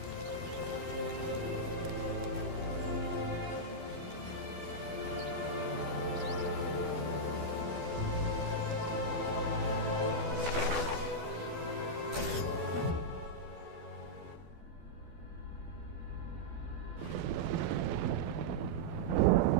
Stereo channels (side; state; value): left; late; 12 ms